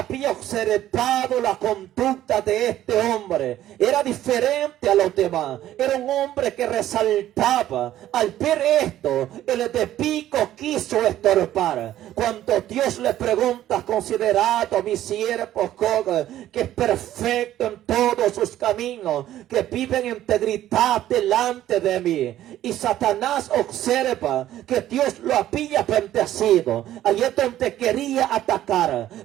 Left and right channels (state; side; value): quieter; left; 12.9 dB